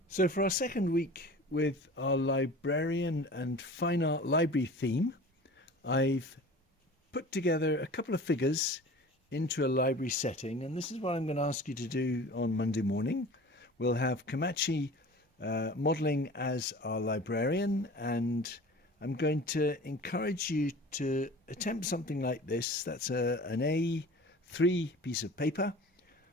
So for our second week with our librarian and fine art library theme, I've put together a couple of figures into a library setting, and this is what I'm going to ask you to do on Monday morning. We'll have Komachi modelling as our librarian, and I'm going to encourage you to attempt something like this. That's an A3 piece of paper.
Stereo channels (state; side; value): normal; both; correlation 0.40